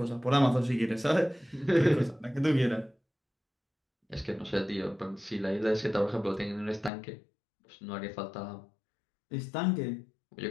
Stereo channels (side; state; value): right; drops out; at 6.9 s